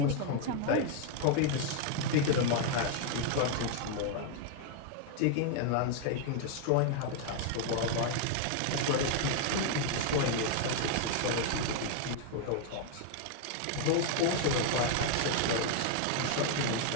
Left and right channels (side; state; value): both; different; correlation 0.00